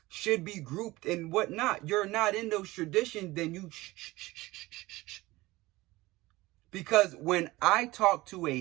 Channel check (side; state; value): left; quieter; 19.5 dB